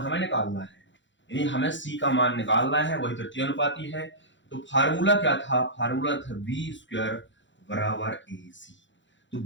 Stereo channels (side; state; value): right; late; 0.54 ms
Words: निकालना है, यानी हमें सी का मान निकालना है, वही तृतीय अनुपाती है। तो फार्मूला क्या था? फार्मूला था बी स्क्वायर बराबर ए सी। तो